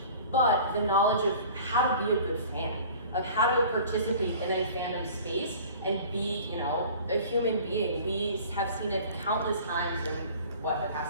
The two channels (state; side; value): inverted; both; correlation -0.45